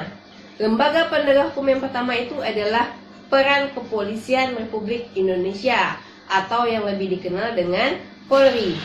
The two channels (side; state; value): both; identical; correlation 1.00